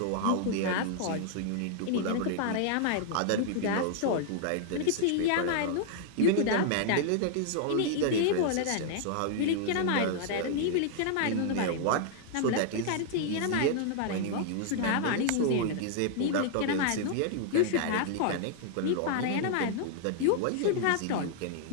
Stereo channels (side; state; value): both; different; correlation 0.00